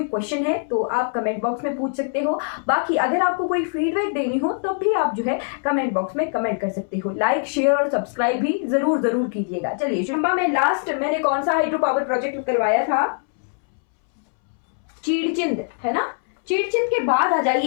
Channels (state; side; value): silent; right; 64 dB below the other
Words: क्वेश्चन है तो आप कमेंट बॉक्स में पूछ सकते हो। बाकी अगर आपको कोई फीडबैक देनी हो तो भी आप जो है कमेंट बॉक्स में कमेंट कर सकते हो। लाइक शेयर और सब्सक्राइब भी जरूर जरूर कीजिएगा। चलिए, चंबा में लास्ट मैंने कौन सा हाइड्रो पावर प्रोजेक्ट करवाया था? चीड़चिंद, है ना। चीड़चिंद के बाद आ